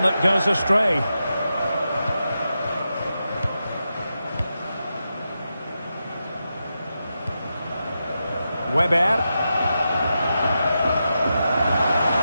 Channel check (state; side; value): inverted; both; correlation -0.88